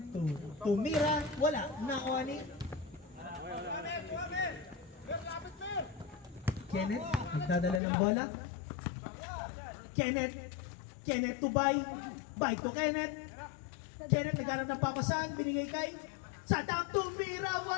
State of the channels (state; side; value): drops out; right; at 7.8 s